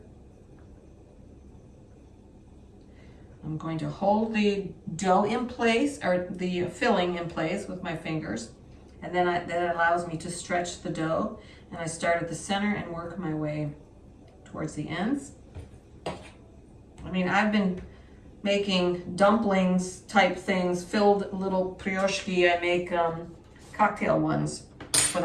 I'm going to hold the dough in place, or the filling in place with my fingers, and then that allows me to stretch the dough, and I start at the center and work my way towards the ends. I mean, I've been making dumplings type things, filled little pierogi. I make cocktail ones for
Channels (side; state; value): both; identical; correlation 1.00